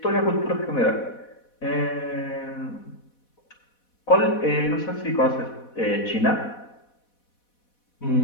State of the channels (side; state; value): right; late; 4.1 ms